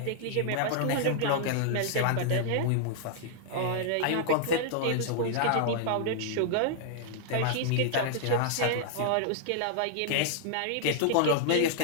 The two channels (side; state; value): both; different; correlation -0.01